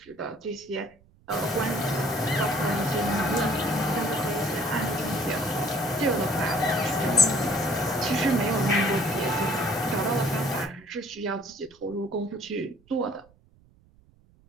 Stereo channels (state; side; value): noise; right; rumble, 30 dB below the sound